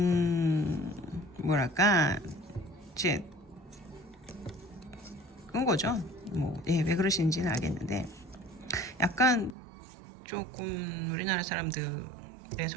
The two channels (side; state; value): left; drops out; at 9.6 s